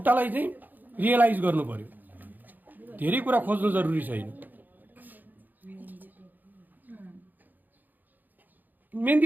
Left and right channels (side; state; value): left; late; 0.086 ms